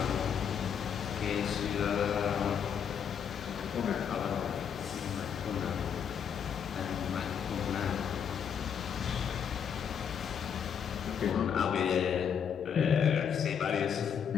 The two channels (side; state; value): right; quieter; 7.7 dB